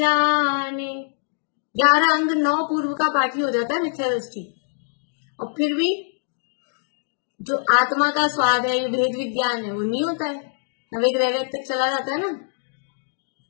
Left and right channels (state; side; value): silent; right; digital silence